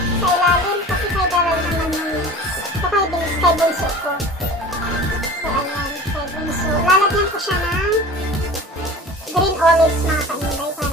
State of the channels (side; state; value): both; normal; correlation 0.39